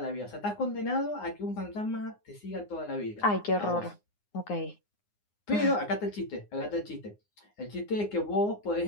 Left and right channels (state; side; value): late; right; 9.7 ms